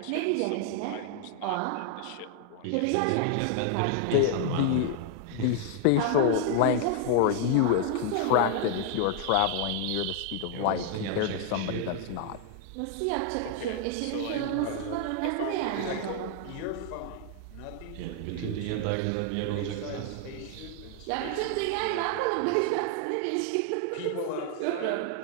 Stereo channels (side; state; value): both; different; correlation 0.00